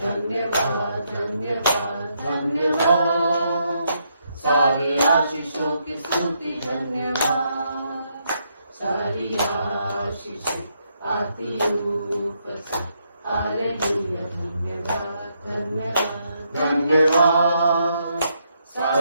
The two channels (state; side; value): inverted; both; correlation -0.77